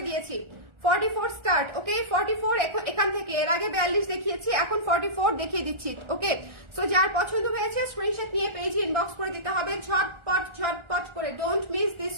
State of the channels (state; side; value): late; left; 1.4 ms